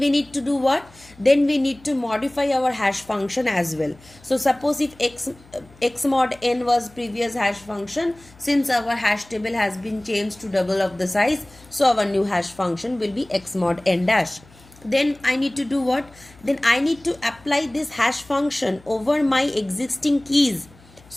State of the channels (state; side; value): noise; left; hum, 25 dB below the sound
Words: need to do what? Then we need to modify our hash function as well. So suppose if x mod n was previous hash function, since our hash table has been changed to double of the size, so our new hash function will be x mod n dash. Then I need to do what? Then I need to apply this hash function over my existing keys